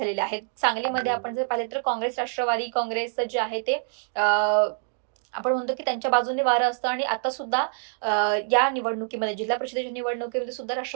आहेत. सांगलीमध्ये आपण जर पाहिले तर काँग्रेस राष्ट्रवादी काँग्रेस जे आहे ते आपण म्हणतो की त्यांच्या बाजूने वारं असतं आणि आता सुद्धा या निवडणुकीमध्ये जिल्हा परिषदेच्या निवडणुकीमध्ये सुद्धा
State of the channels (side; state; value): left; silent; digital silence